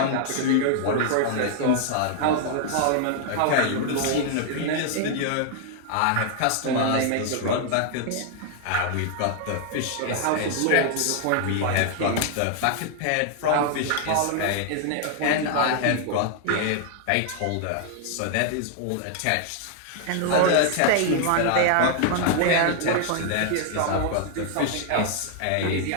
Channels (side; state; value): both; different; correlation 0.00